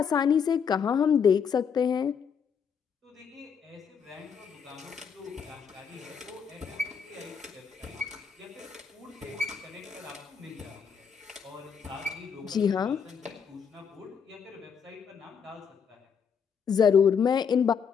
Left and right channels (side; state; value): right; quieter; 6.8 dB